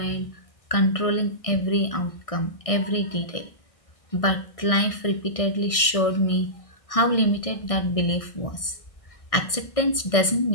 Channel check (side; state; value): right; late; 1.6 ms